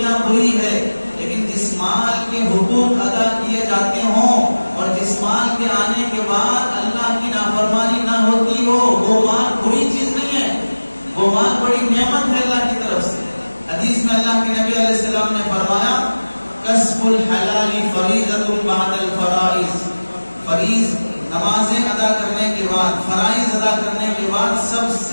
بری ہے۔ لیکن جس مال کے حقوق ادا کیے جاتے ہوں اور جس مال کے آنے کے بعد اللہ کی نافرمانی نہ ہوتی ہو، وہ مال بری چیز نہیں ہے، وہ مال بڑی نعمت ہے اللہ کی طرف سے۔ حدیث میں اللہ کے نبی علیہ السلام نے فرمایا کسب الحلال فریضۃ بعد الفرائض، فریض نمازیں ادا کرنے کے بعد، فرائض ادا کرنے کے بعد سب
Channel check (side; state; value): both; inverted; correlation -1.00